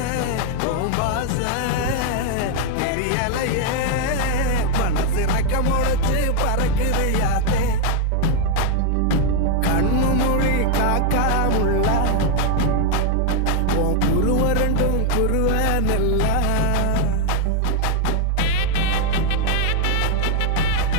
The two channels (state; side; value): different; both; correlation 0.00